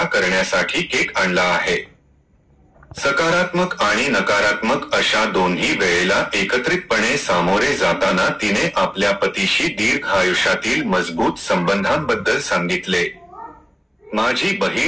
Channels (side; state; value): both; identical; correlation 1.00